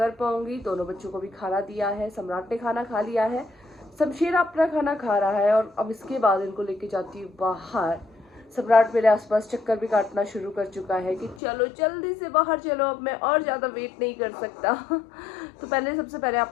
पाऊंगी। दोनों बच्चों को भी खाना दिया है, सम्राट ने खाना खा लिया है, शमशेर अपना खाना खा रहा है और अब इसके बाद इनको लेके जाती हूँ बाहर। सम्राट मेरे आसपास चक्कर भी काटना शुरू कर चुका है कि चलो जल्दी से बाहर चलो, अब मैं और ज़्यादा वेट नहीं कर सकता। तो सबसे पहले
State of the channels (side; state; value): right; drops out; at 11.4 s